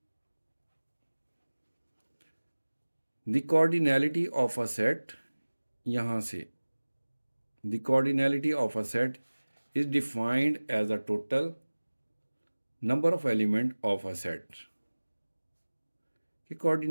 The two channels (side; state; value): both; inverted; correlation -1.00